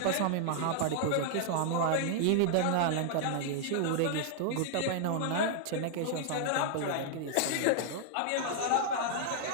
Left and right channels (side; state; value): both; different; correlation -0.01